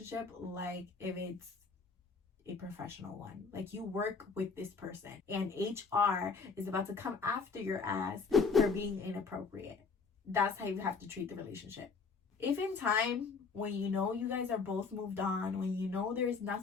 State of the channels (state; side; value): quieter; right; 4.8 dB